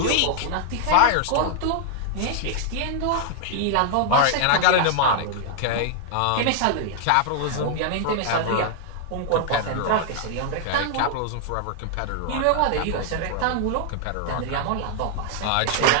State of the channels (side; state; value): both; different; correlation -0.01